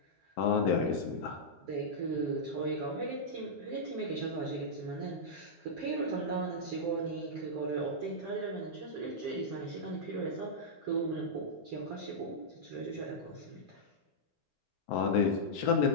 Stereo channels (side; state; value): both; normal; correlation -0.09